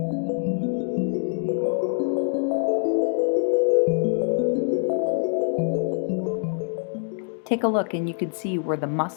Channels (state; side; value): silent; right; 62 dB below the other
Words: Take a look and you can see where the